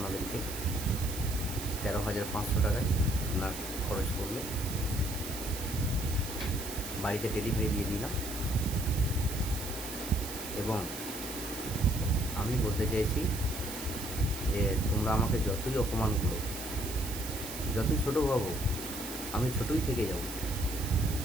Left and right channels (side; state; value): right; noise; hiss, 8 dB below the sound